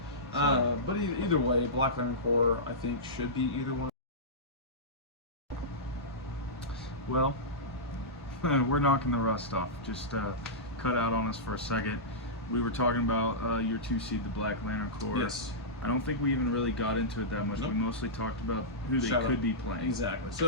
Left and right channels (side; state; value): both; normal; correlation -0.16